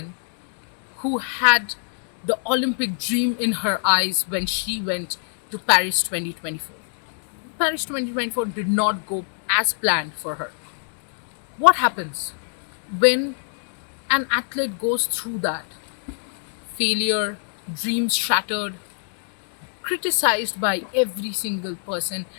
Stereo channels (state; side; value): silent; right; 62 dB below the other